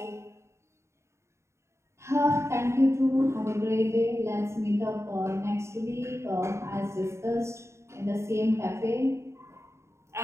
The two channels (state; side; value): late; left; 0.14 ms